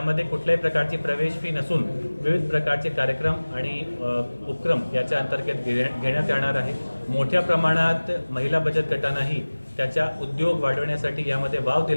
कुठल्याही प्रकारची प्रवेश फी नसून विविध प्रकारचे कार्यक्रम आणि उपक्रम याच्या अंतर्गत घेण्यात येणार आहे। मोठ्या प्रमाणात महिला बचत गटांनाही त्याचा उद्योग वाढवण्यासाठी यामध्ये वाव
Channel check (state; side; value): inverted; both; correlation -1.00